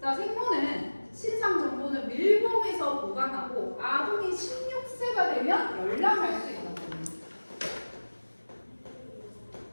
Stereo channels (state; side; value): inverted; both; correlation -1.00